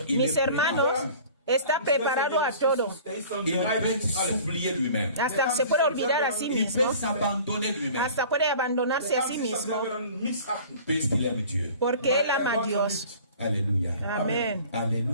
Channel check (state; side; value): inverted; both; correlation -0.45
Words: il mis est hermanos, está preparado a todo. Il peut s'oublier lui-même. Hasta se puede olvidar a sí Il mismo. peut s'abandonner lui-même. Hasta puede abandonarse a sí mismo. Puisqu'il aime Dieu. Porque él ama a Dios. Alléluia. Amén.